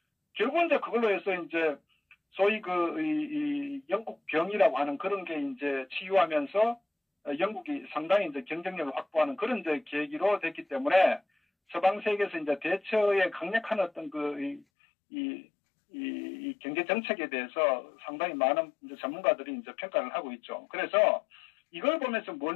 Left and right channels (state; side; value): drops out; right; at 14.7 s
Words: 결국은 이제 그걸로 해서 이제 소위 이 영국 병이라고 하는 그런 게 이제 치유하면서 영국이 상당히 이제 경쟁력을 확보하는 그런 이제 계기로 됐기 때문에, 서방 세계에서 이제 대처의 강력한 어떤 이 경제 정책에 대해서 상당히 많은 이제 전문가들이 이제 평가를 하고 있죠. 그래서 이걸 보면서 뭘